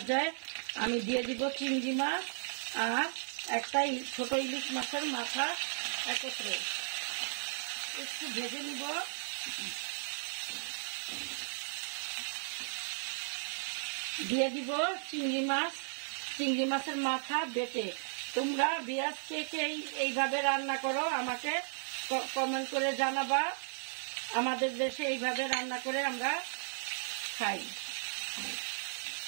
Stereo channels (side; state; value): left; silent; 54 dB below the other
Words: আমি দিয়ে দিব চিংড়ি মাছ আর একটা ছোট ইলিশ মাছের মাথা একত্রে একটু ভেজে নিব। দিয়ে দিব চিংড়ি মাছের মাথা বেটে। তোমরা ভিউয়ার্স কে এইভাবে রান্না করো আমাকে কমেন্ট করে জানাবা। আমাদের দেশে এইভাবে রান্না করে আমরা খাই।